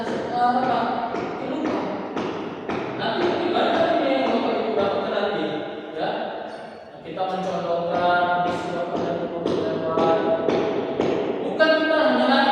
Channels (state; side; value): identical; both; correlation 1.00